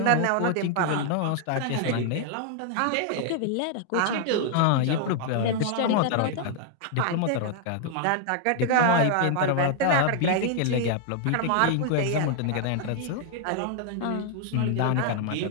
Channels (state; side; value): different; both; correlation 0.00